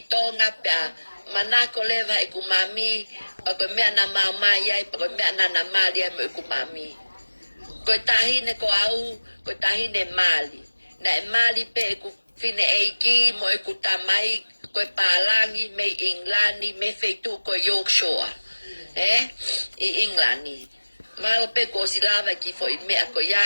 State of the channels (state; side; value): inverted; both; correlation -1.00